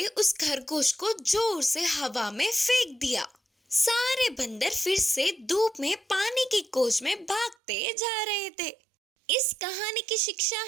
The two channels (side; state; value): left; drops out; at 7.6 s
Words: उस खरगोश को जोर से हवा में फेंक दिया। सारे बंदर फिर से धूप में पानी की खोज में भागते जा रहे थे। इस कहानी की शिक्षा